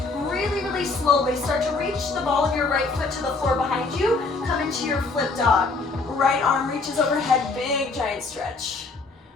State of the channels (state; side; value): quieter; right; 3.9 dB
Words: Really, really slowly start to reach the ball of your right foot to the floor behind you. Come into your flip dog. Right arm reaches overhead, big giant stretch.